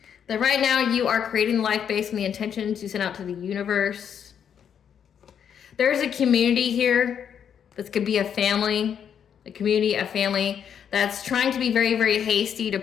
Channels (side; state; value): right; quieter; 8.2 dB